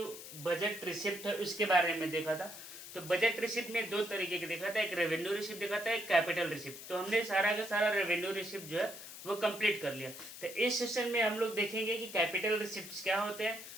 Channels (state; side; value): noise; left; hiss, 12 dB below the sound